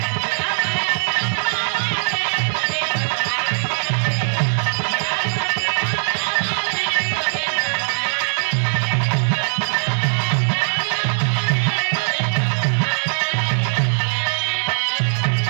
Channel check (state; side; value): silent; left; 63 dB below the other